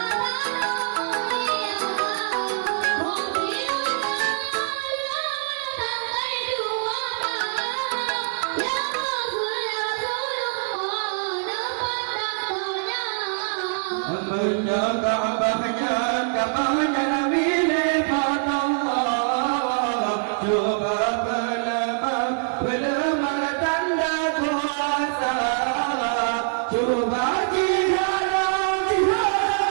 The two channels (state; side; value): silent; left; 63 dB below the other